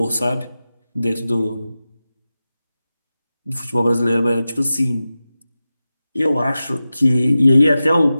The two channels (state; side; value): inverted; both; correlation -0.94